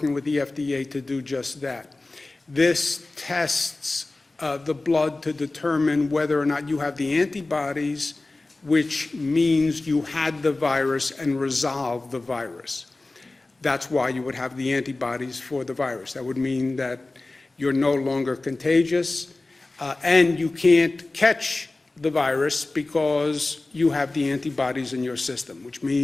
with the FDA to do just that. This tests the blood to determine whether or not you have the antibodies, which means you had the virus and resolved the virus. That's why you would have the antibodies for the virus. That would mean that you're no longer contagious, and you can't catch the virus because you have the antibodies in your system, which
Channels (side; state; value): right; quieter; 3.1 dB